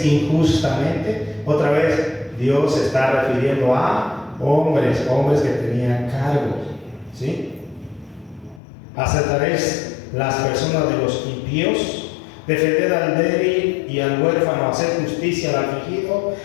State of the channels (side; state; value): right; drops out; at 8.6 s